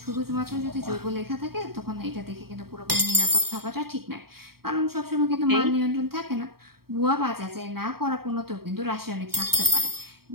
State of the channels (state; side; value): late; left; 0.94 ms